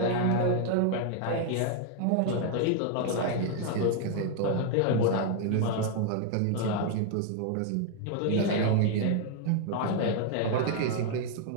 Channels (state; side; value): different; both; correlation 0.00